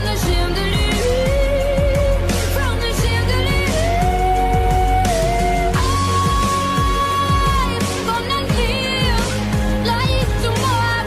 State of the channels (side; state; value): both; identical; correlation 1.00